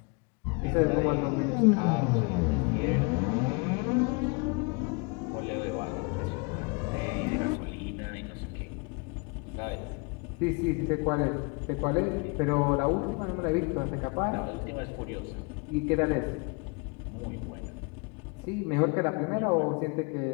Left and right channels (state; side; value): quieter; right; 31.3 dB